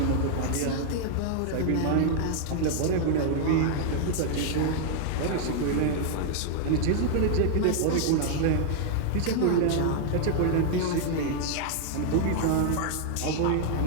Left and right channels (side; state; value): both; different; correlation 0.00